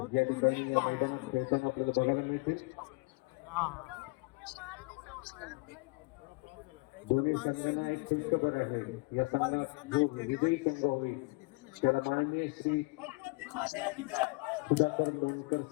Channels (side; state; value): right; quieter; 28.3 dB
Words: या ठिकाणी या मैदानात खेळताना आपल्याला बघायला मिळतील. दोन्ही संघांना एक खुशखबर आहे. या संघात जो विजयी संघ होईल त्याला माननीय श्री सुधाकर लोणकर